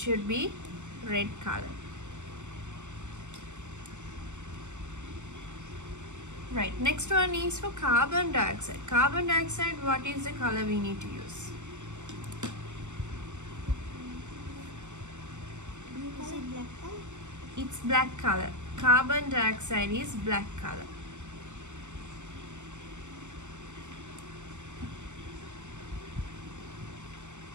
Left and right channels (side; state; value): left; late; 0.84 ms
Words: be red color. Right, next one is for carbon dioxide. Carbon dioxide, what is the color we need to use? Is it black color? It's black color. Carbon dioxide is black color.